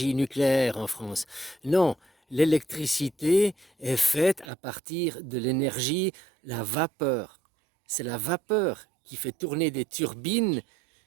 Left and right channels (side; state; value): left; drops out; at 4.5 s